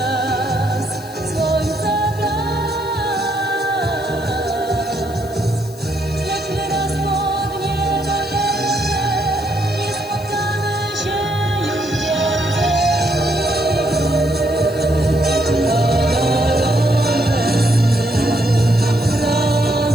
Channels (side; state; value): left; noise; hiss, 20 dB below the sound